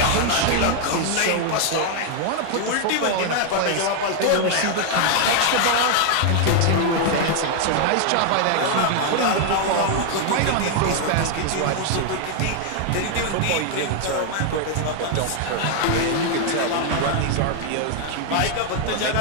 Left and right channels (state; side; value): different; both; correlation 0.00